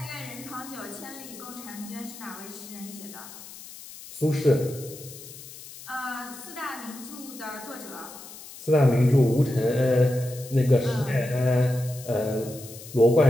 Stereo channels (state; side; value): noise; left; hiss, 16 dB below the sound